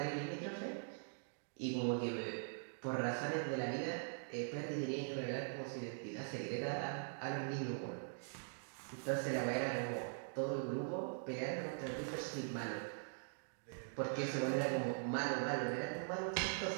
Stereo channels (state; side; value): silent; left; digital silence